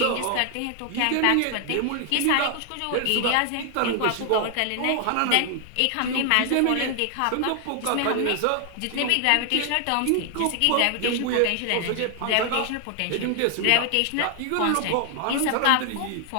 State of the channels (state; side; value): different; both; correlation 0.00